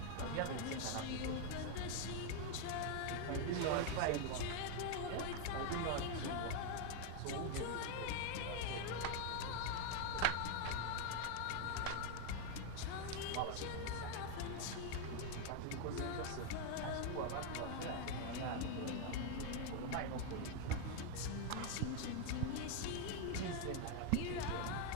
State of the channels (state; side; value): different; both; correlation 0.01